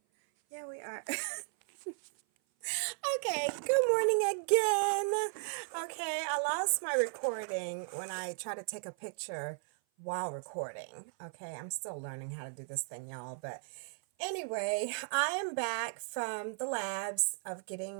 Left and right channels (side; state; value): left; silent; 54 dB below the other